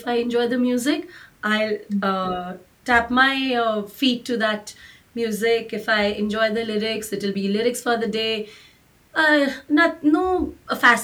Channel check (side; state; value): both; identical; correlation 1.00